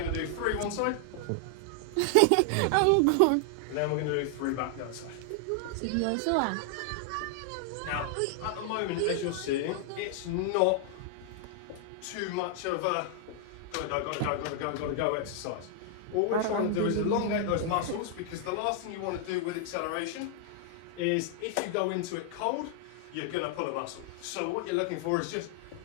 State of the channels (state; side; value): different; both; correlation 0.00